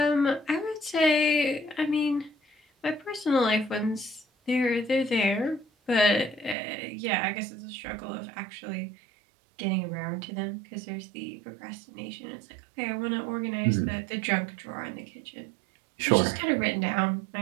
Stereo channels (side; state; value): left; drops out; at 6.6 s